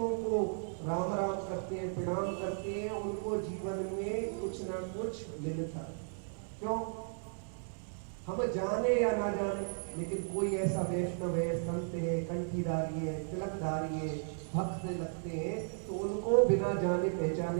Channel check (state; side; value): silent; left; digital silence